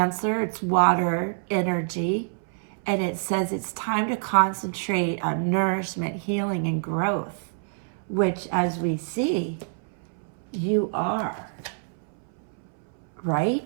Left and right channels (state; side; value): silent; left; 61 dB below the other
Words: it's water energy, and it says it's time to concentrate on nourishment, healing, and growth, which, as we see, you are,